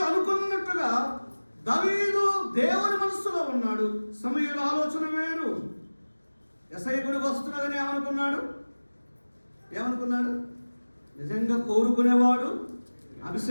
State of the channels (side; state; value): both; inverted; correlation -1.00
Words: అనుకున్నట్టుగా దావీదు దేవుని మనస్సులో ఉన్నాడు. సమూయేలు ఆలోచన వేరు. యెషయా గుడికి వస్తున్నాడని ఏమనుకున్నాడు? నిజంగా కోరుకునేవాడు,